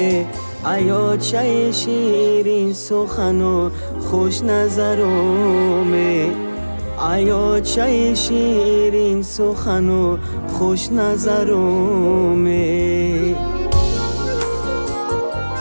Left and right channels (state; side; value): inverted; both; correlation -1.00